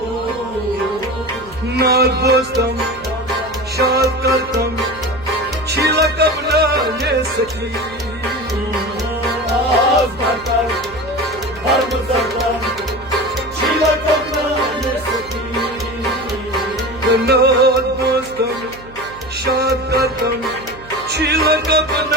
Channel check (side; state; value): right; noise; hum, 19 dB below the sound